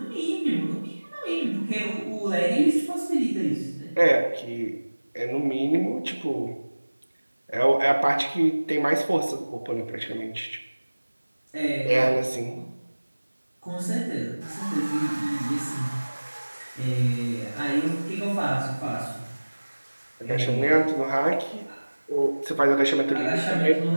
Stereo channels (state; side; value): inverted; both; correlation -1.00